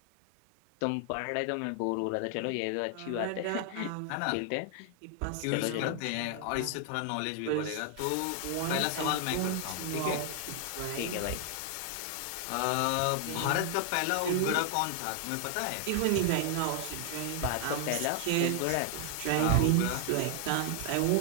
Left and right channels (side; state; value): both; different; correlation 0.00